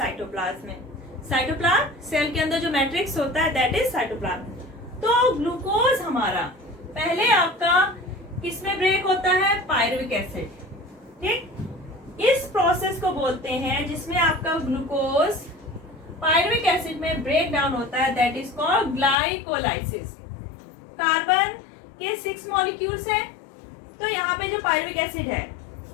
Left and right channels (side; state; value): right; drops out; at 19.2 s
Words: में। साइटोप्लाज्म सेल के अंदर जो मैट्रिक्स होता है दैट इज साइटोप्लाज्म। तो ग्लूकोज हमारा पहले आपका किसमें ब्रेक होता है, पायरुविक एसिड, ठीक। इस प्रोसेस को बोलते हैं जिसमें आपका ग्लूकोज पायरुविक एसिड में ब्रेक डाउन होता है, that is called glycolysis. Carbon के 6 मॉलिक्यूल्स हैं, तो यहाँ पे जो पायरुविक एसिड है,